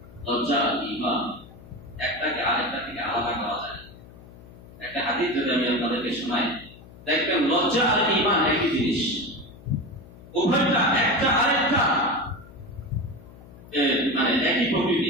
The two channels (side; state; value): left; noise; hum, 20 dB below the sound